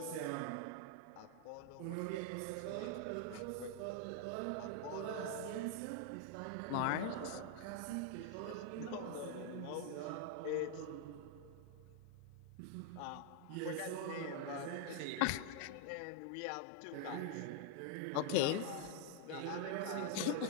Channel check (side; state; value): both; different; correlation 0.00